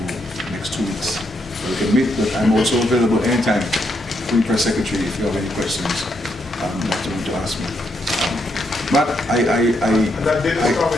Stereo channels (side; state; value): both; normal; correlation 0.78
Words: next 2 weeks where we can meet. But I'm also available anytime, free press secretary, if you have any questions to ask me. Matt, I